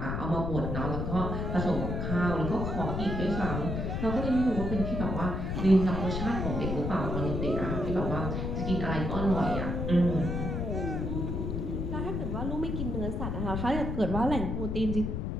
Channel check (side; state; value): left; noise; rumble, 2 dB below the sound